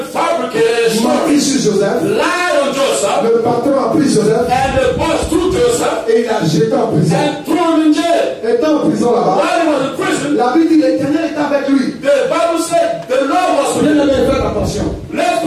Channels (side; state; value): both; identical; correlation 1.00